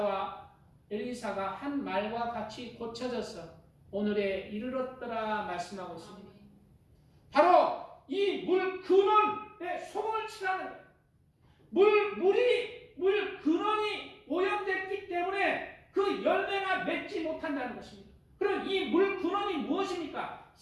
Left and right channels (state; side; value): identical; both; correlation 1.00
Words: 엘리사가 한 말과 같이 고쳐져서 오늘에 이르렀더라 말씀하고 있습니다. 바로 이 물 근원에 소금을 치라는 거예요. 물 근원이 오염됐기 때문에 그 열매가 맺지 못한다는 것입니다. 그럼 이 물 근원이 무엇입니까?